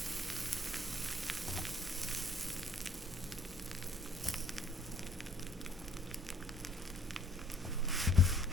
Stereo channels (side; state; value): both; normal; correlation 0.57